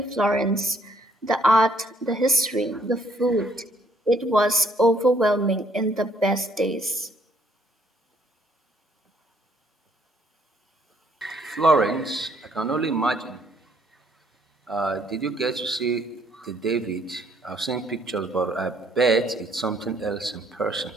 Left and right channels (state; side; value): normal; both; correlation 0.66